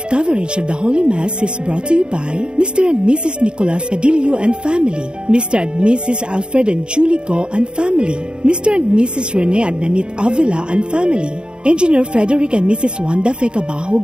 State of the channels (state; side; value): late; left; 0.051 ms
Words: live coverage of the Holy Mass is brought to you by Mr. and Mrs. Nicolas Cadillo and family, Mr. and Mrs. Alfred and Julie Go and family, Mr. and Mrs. Rene and Nanit Avila and family, Engineer Frederick and Mrs. Wanda